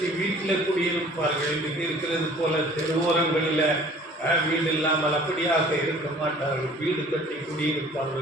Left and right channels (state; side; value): normal; both; correlation 0.50